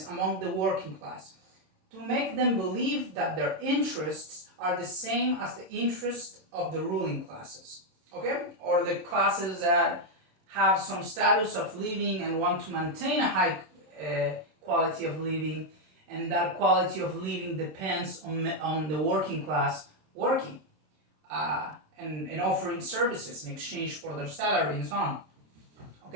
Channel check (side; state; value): left; late; 26 ms